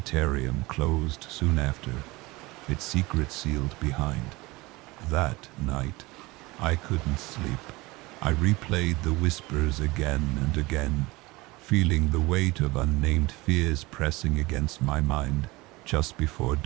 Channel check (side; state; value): left; quieter; 22.2 dB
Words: closed soon after, its secret sealed behind. That night, I couldn't sleep. I replayed the whispers again and again, feeling the weight of unnamed fears pressing against my mind. Just before